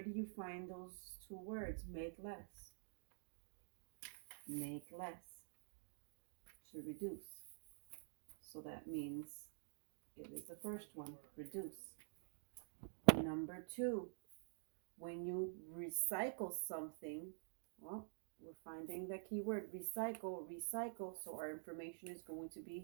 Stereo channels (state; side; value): silent; left; digital silence